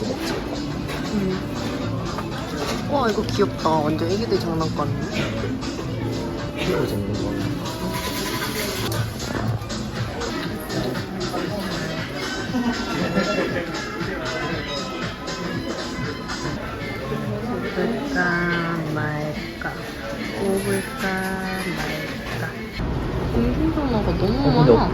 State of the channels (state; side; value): identical; both; correlation 1.00